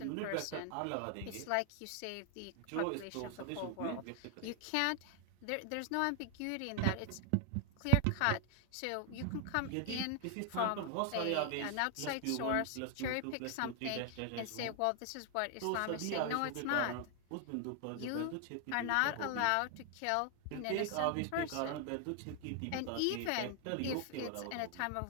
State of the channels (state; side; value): different; both; correlation 0.00